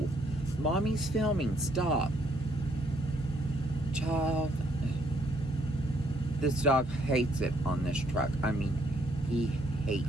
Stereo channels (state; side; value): normal; both; correlation 0.69